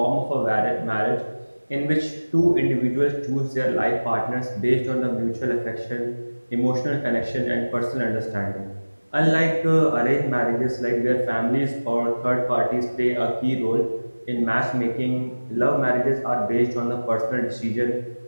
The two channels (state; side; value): inverted; both; correlation -1.00